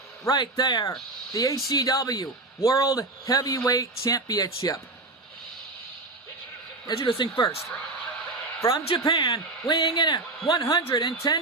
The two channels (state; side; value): quieter; left; 3.2 dB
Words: right there, the ACW World Heavyweight Championship. Introducing first, from Japan, weighing in at